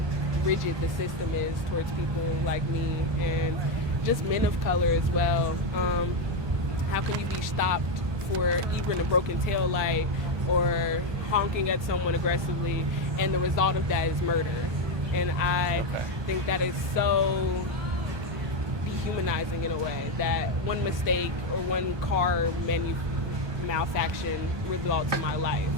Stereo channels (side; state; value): left; late; 1.2 ms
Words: rigid the system is towards people like me and just men of color as well. How can you be stopped for even a broken tail light or honking at someone aggressively, and the result of that is murder? And I think that is so dehumanizing in a way, that one mistake or one car malfunction results in my life.